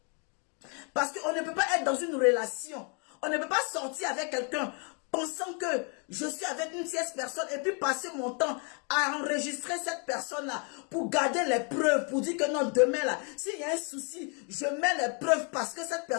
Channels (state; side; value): quieter; right; 37.3 dB